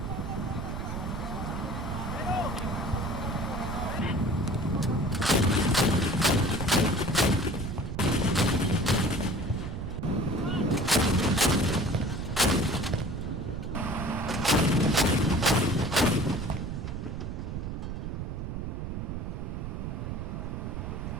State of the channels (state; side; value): noise; right; rumble, 5 dB below the sound